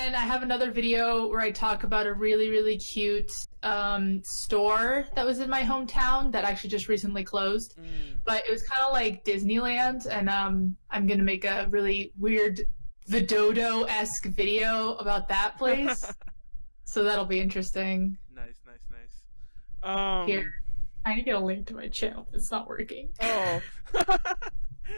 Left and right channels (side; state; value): both; inverted; correlation -1.00